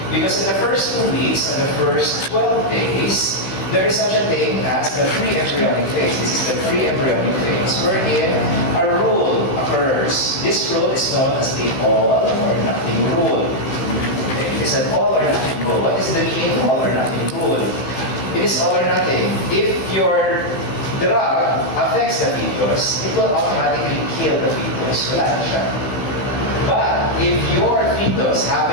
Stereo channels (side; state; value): right; late; 15 ms